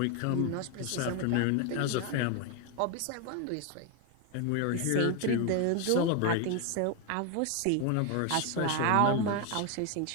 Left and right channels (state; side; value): different; both; correlation 0.01